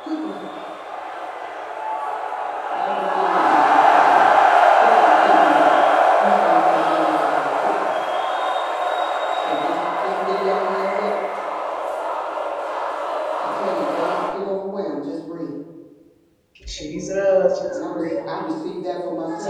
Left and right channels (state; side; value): identical; both; correlation 1.00